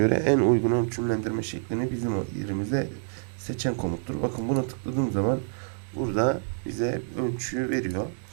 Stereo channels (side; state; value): left; silent; digital silence